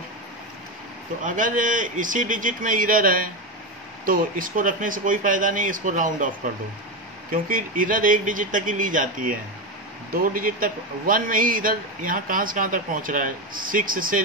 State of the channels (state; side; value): normal; both; correlation 0.14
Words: तो अगर इसी डिजिट में एरर है तो इसको रखने से कोई फ़ायदा नहीं, इसको राउंड ऑफ कर दो, क्योंकि एरर एक डिजिट तक ही ली जाती है, 2 डिजिट तक 1 में ही इधर यहाँ कहाँ से कहाँ तक पहुँच रहा है, 6 से